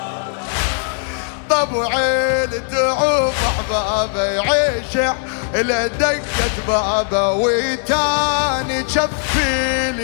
طبعي التعوف احبابي يعيشي على دقة بابه ويتاني شفي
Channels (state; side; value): silent; right; 63 dB below the other